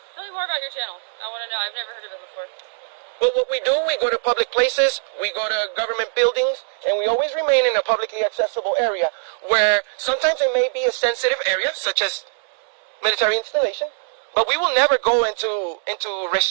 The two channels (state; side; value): silent; left; 64 dB below the other